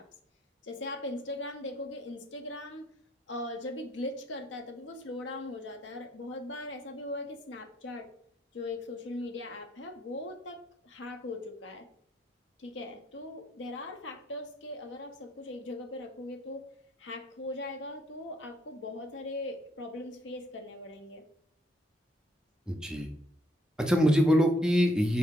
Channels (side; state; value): both; normal; correlation 0.70